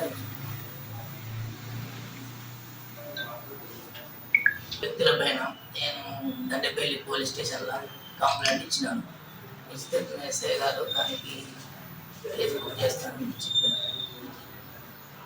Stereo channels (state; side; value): identical; both; correlation 1.00